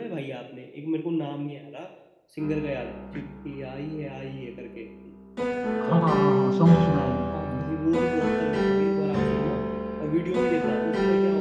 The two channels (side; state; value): both; identical; correlation 1.00